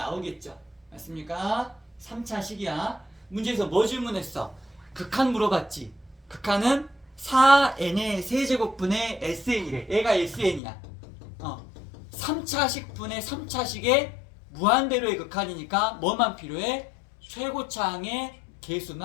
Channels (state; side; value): drops out; right; at 10.6 s